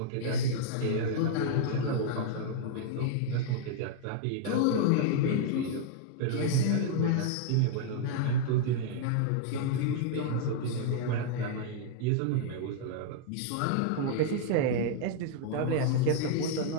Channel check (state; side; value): different; both; correlation -0.01